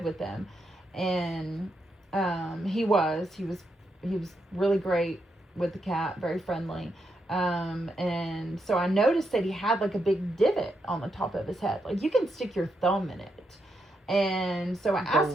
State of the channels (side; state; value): both; normal; correlation 0.82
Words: with them. And he was really great with the cat, very friendly. And so I noticed that he had like a big divot on the top of his head. Like you can stick your thumb in it. And so I asked